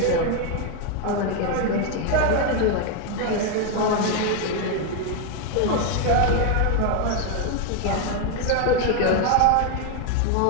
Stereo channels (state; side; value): different; both; correlation 0.01